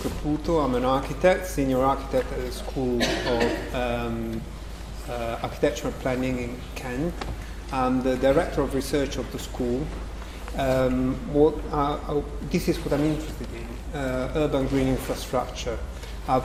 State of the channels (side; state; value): both; identical; correlation 1.00